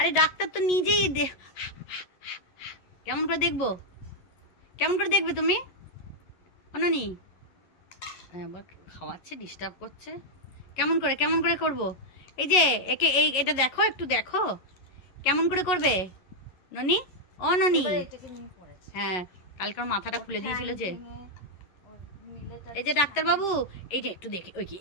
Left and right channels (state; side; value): late; right; 11 ms